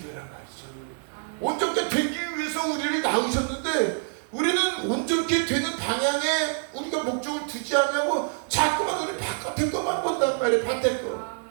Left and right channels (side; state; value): left; silent; digital silence